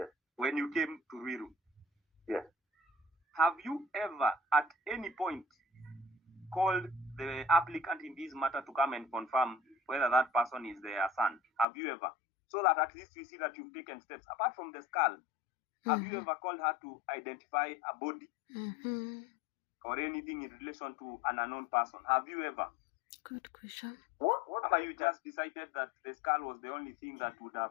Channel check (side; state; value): right; drops out; at 11.7 s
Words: When you came to Ruiru. Yes. Have you ever at any point called the applicant in this matter to come and confirm whether that person is their son? Have you ever? So that at least we see that you've taken steps. Apart from the skull, have you ever called her to identify a body or anything in relation to an unknown person? Have you ever? Good question. What have you just decided that the skull was the only thing that would